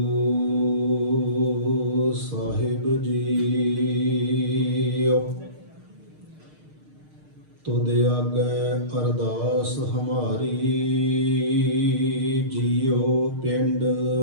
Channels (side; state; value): left; late; 6.5 ms